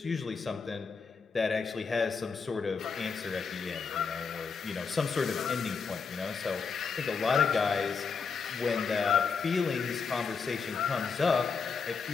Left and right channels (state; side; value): quieter; right; 5.4 dB